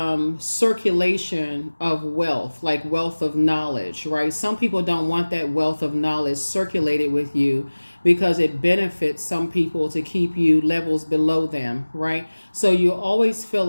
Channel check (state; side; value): inverted; both; correlation -1.00